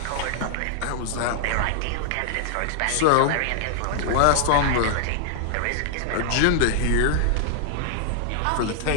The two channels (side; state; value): both; different; correlation -0.01